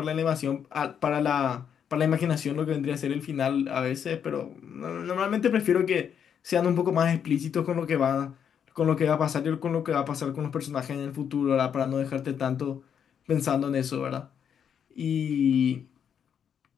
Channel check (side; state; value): right; quieter; 8.1 dB